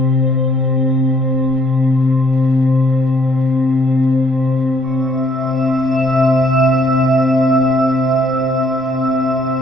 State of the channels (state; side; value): normal; both; correlation 0.65